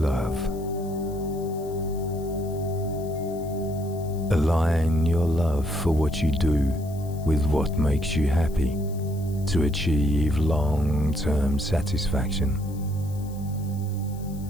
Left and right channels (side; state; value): left; noise; hiss, 22 dB below the sound